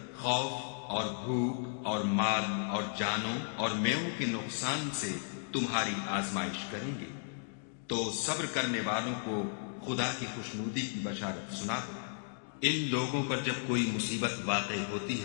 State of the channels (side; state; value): right; silent; digital silence